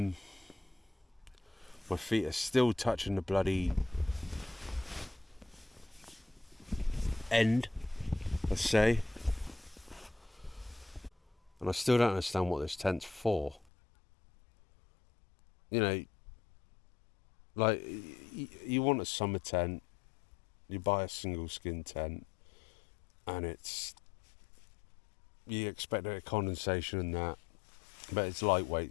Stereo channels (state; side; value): drops out; right; at 13.7 s